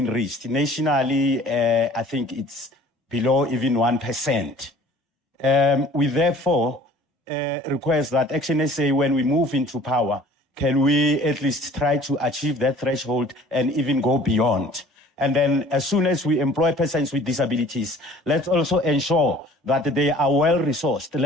reached. Nationally, I think it's below even 1%. We therefore request that ActionSA, when we move into power, can we at least try to achieve that threshold and even go beyond? And then as soon as we employ persons with disabilities, let's also ensure that they are well resourced.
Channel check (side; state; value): both; normal; correlation 0.50